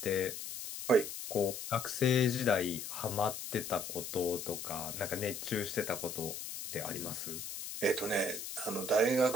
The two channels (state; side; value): noise; left; hiss, 7 dB below the sound